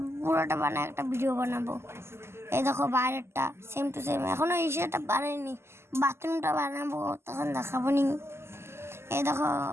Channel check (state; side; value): late; left; 0.12 ms